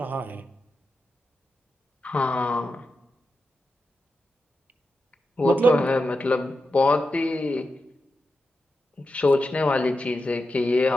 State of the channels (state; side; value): normal; both; correlation 0.89